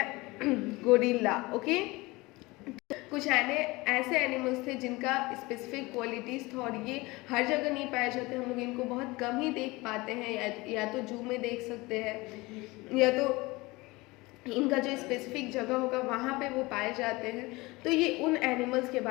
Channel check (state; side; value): quieter; right; 22.4 dB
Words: गोरिल्ला। ओके, कुछ ऐसे एनिमल्स थे जिनका स्पेसिफिक क्वालिटीज़ था और ये हर जगह नहीं पाए जाते। हम लोग इनको बहुत कम ही देख पाते हैं, या तो जू में देख सकते हैं या तो इनका जो स्पेसिफिक जगह होगा वहाँ पे वो पाए जाते हैं। तो ये उन एनिमल्स के